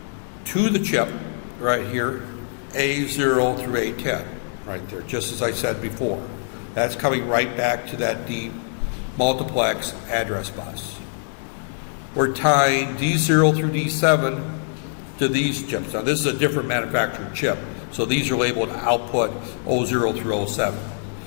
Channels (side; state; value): right; silent; digital silence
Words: to the chip right here A0 through A10 right there, just as I said before. That's coming right back to that multiplex address bus. We're tying D0 through D7 to these chips. Now this is a different manufactured chip, so these are labeled output 00 through 07.